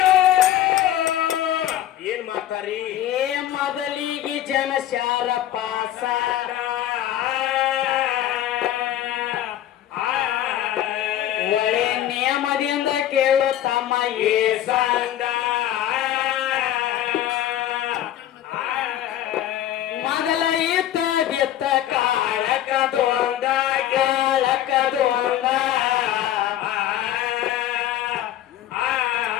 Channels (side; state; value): right; quieter; 12.2 dB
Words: ಏನ್ ಮಾಡ್ತಾರಿ ಏ ಮೊದಲಿಗೆ ಜನಶಾರ ಪಾಸ ಒಳ್ಳೆ ನಿಯಮದಿಂದ ಕೇಳು ತಮ್ಮ ಏ ಸಂದ ಮೊದಲ ಇತ್ತ ಬಿತ್ತ ಕಾಳಕದೊಂದ ಕಾಳಕದೊಂದ